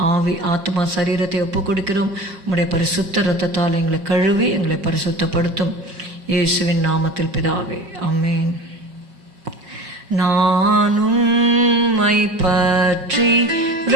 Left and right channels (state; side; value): late; left; 5.7 ms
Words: ஆவி ஆத்மா சரீரத்தை ஒப்புக் கொடுக்கிறோம். உம்முடைய பரிசுத்த இரத்தத்தால் எங்களை கழுவி எங்களை பரிசுத்தப்படுத்தும். இயேசுவின் நாமத்தில் பிதாவே, ஆமென். நான் உம்மை பற்றி